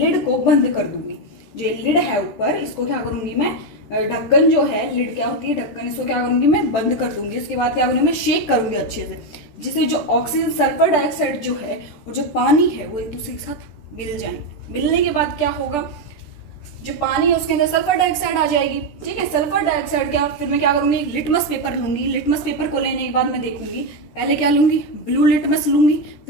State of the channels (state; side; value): late; right; 14 ms